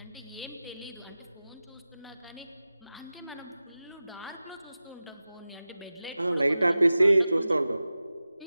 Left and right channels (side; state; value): both; inverted; correlation -0.95